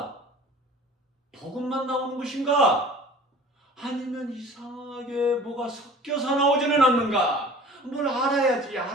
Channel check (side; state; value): both; normal; correlation 0.44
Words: 복음만 나오는 것인가? 아니면 이상하게 뭐가 섞여서 나오지는 않는가? 뭘